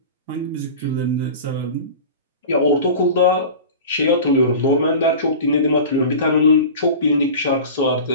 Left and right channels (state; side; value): inverted; both; correlation -0.35